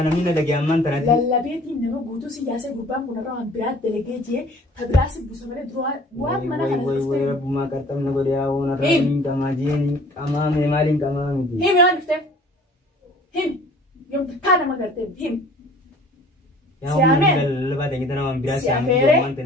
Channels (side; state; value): both; normal; correlation 0.50